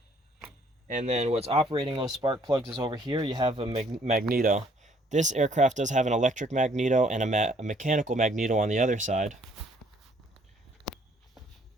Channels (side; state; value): both; normal; correlation 0.63